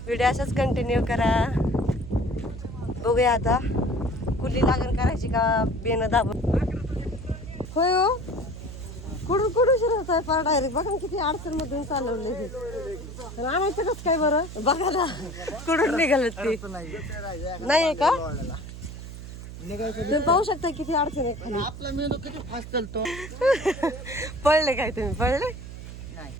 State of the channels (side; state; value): right; noise; hum, 11 dB below the sound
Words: व्हिडिओ असाच कंटिन्यू करा. बघूया आता कुठली लागण करायची का बेनं दाबून. होय हो, कुठून कुठून शिरत आहे पार डायरेक्ट. बघा किती अडचण मधून चालवले. आणायचं कसं काय बरं? बघा ना कुठून निघाल ते. नाही का? तुम्ही पाहू शकता किती अडचण आहे खाली. आपला मेंदू किती फास्ट चालतो. पळले काय तुम्ही? पळले